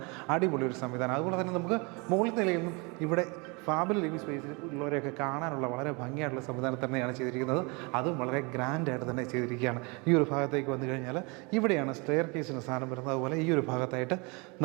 അടിപൊളി ഒരു സംവിധാനം. അതുപോലെ തന്നെ നമുക്ക് മുകളിൽ നിലയിൽ നിന്നും ഇവിടെ ഫാമിലി ലിവിങ് സ്പേസിൽ ഉള്ളവരെയൊക്കെ കാണാനുള്ള വളരെ ഭംഗിയായിട്ടുള്ള സംവിധാനം തന്നെയാണ് ചെയ്തിരിക്കുന്നത്. അതും വളരെ ഗ്രാൻഡായിട്ട് തന്നെ ചെയ്തിരിക്കുകയാണ്. ഈ ഒരു ഭാഗത്തേക്ക് വന്നു കഴിഞ്ഞാൽ ഇവിടെയാണ് സ്റ്റെയർ കേസിന് സ്ഥാനം വരുന്നത്. അതുപോലെ ഈ ഒരു ഭാഗത്തായിട്ട്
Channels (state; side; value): quieter; left; 29.5 dB